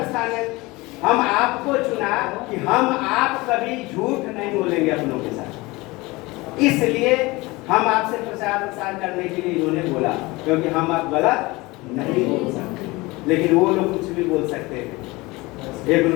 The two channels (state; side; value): quieter; right; 22.4 dB